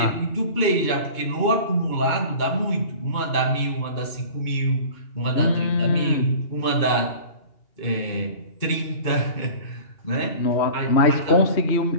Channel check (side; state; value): right; late; 2.8 ms